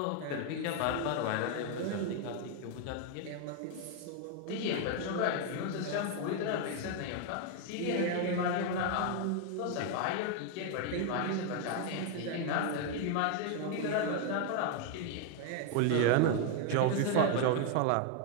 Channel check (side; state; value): both; different; correlation 0.00